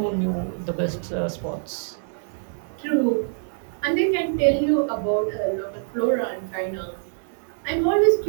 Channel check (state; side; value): silent; left; 58 dB below the other